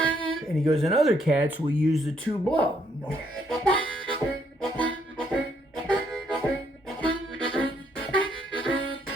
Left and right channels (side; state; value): both; normal; correlation 0.71